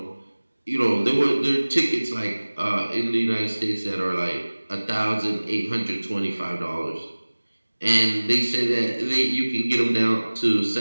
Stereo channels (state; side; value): inverted; both; correlation -1.00